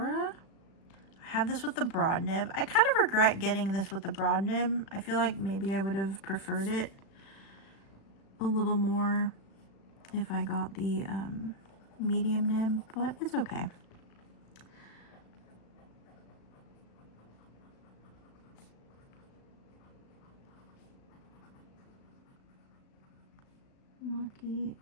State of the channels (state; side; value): late; right; 36 ms